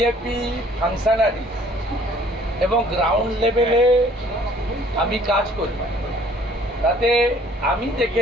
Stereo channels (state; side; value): normal; both; correlation 0.57